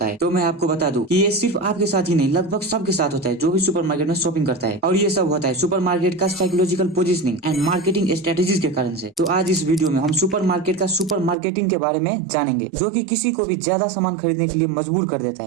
है। तो मैं आपको बता दूं कि ये सिर्फ आपके साथ ही नहीं, लगभग सबके साथ होता है जो भी सुपरमार्केट में शॉपिंग करता है। और ये सब होता है सुपरमार्केट का psychological positioning and marketing strategies के कारण से। तो आज इस वीडियो में हम सुपरमार्केट का सुपर मार्केटिंग के बारे में जानेंगे, जो कि किसी को भी ज्यादा सामान खरीदने के लिए मजबूर कर देता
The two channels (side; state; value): left; drops out; at 11.4 s